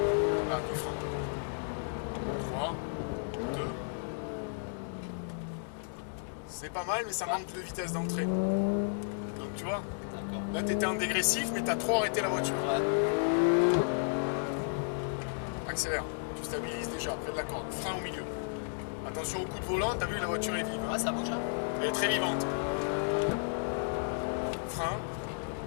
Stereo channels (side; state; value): right; silent; digital silence